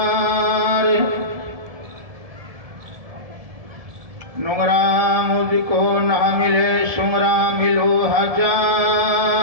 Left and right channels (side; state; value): left; late; 1.7 ms